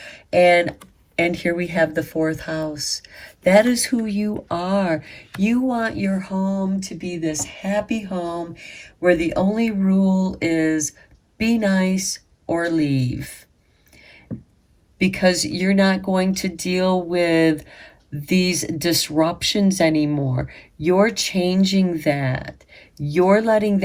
And and here we have the fourth house. That is who you are. You want your home to be this happy home where the only rule is be nice or leave, because you're not going to deal with these disruptions anymore. You're changing that. You're letting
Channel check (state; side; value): identical; both; correlation 1.00